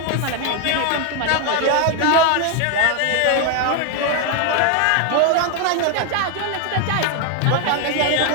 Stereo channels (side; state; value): both; different; correlation 0.01